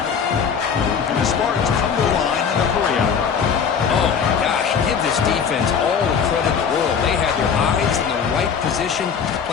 And the Spartans come to the line in a hurry up. Oh, my gosh. Give this defense all the credit in the world. They had their eyes in the right position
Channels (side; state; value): right; quieter; 6.8 dB